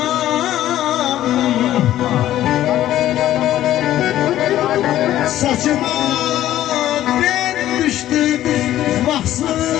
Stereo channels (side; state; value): right; quieter; 13.1 dB